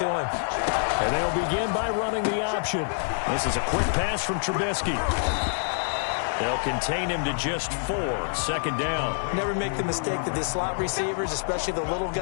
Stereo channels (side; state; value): right; silent; 61 dB below the other